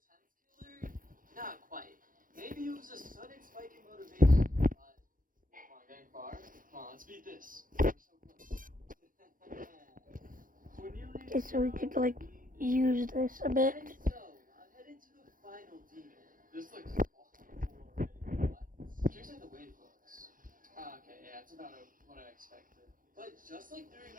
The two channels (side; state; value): left; late; 0.40 ms